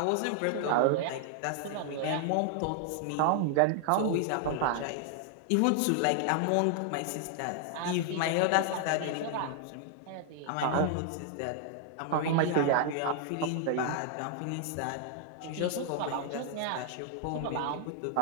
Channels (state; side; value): different; both; correlation 0.00